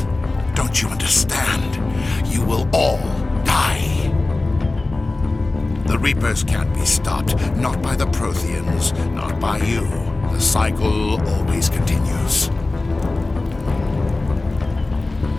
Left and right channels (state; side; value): quieter; right; 3.1 dB